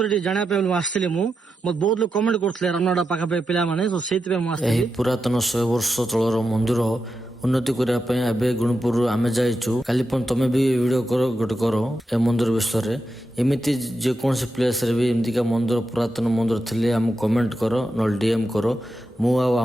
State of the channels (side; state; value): both; normal; correlation 0.87